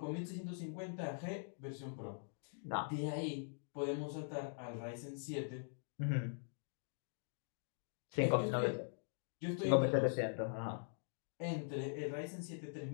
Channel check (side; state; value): right; silent; digital silence